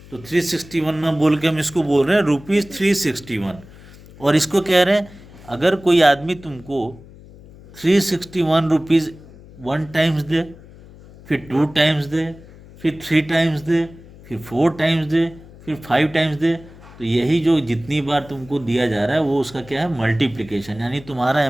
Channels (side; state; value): left; noise; hum, 21 dB below the sound